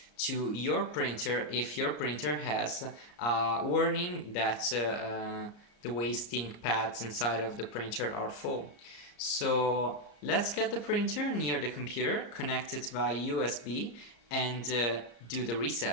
to your printer if your printer has a warning that the waste ink pads inside of the printer are full. So let's get the printer near the computer, connect it via USB, and do the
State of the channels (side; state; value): right; late; 34 ms